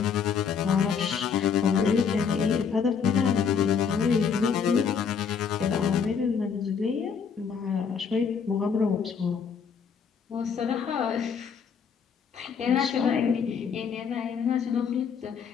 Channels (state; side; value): quieter; right; 6.5 dB